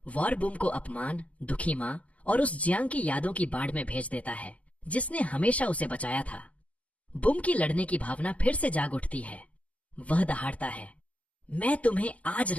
वॉर बुम को अपमान, दुखी माँ और उस जियांग की यादों की बाढ़ में भेज देता है, जिसने हमेशा उसे बचाया था। बुम की लड़ने की भावना फिर से जाग उठती है। वह दहाड़ता है, मैं तुम्हें आज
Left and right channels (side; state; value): right; late; 0.071 ms